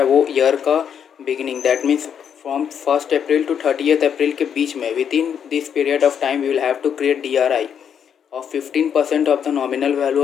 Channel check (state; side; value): quieter; right; 8.1 dB